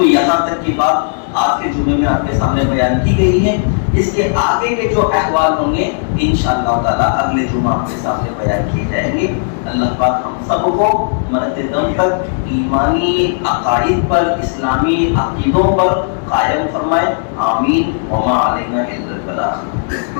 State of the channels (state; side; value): silent; right; digital silence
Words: یہاں تک کی بات آج کے جمعے میں آپ کے سامنے بیان کی گئی ہے۔ اس کے آگے کے جو احوال ہوں گے انشاءاللہ تعالیٰ اگلے جمعہ آپ کے سامنے بیان کیے جائیں گے۔ اللہ پاک ہم سب کو مرتے دم تک ایمانی عقائد پر، اسلامی عقیدوں پر قائم فرمائے، آمین۔ وما علینا الا